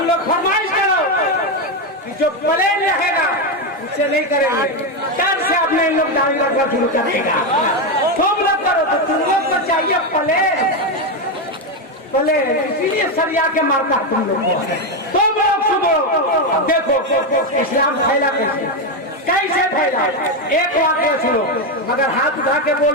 लोग फरमाइश करो कि जो प्लेन रहेगा उससे नहीं करेंगे, डर से अपने इन लोग दाढ़ी रखना शुरू करेगा। तुम लोग करो तो तुम लोग को चाहिए प्लेन, इसीलिए सरिया के मारता तुम लोग को। तुम लोग सुनो, अब देखो इस्लाम फैला कैसे फैला। एक वाक्य सुनो, मगर हाथ उठा के बोल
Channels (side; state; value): both; normal; correlation 0.08